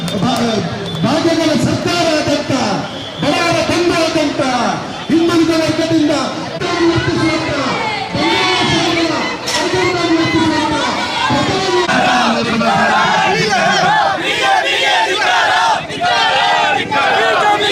ಭಾಗ್ಯಗಳ ಸರ್ಕಾರದಂತ ಬಡವರ ಬಂಧುವಾದಂತ ಹಿಂದುಳಿದ ವರ್ಗದಿಂದ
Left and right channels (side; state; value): both; identical; correlation 1.00